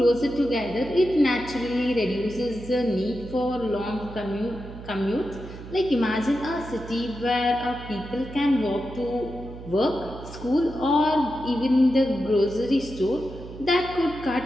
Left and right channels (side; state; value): right; noise; hum, 13 dB below the sound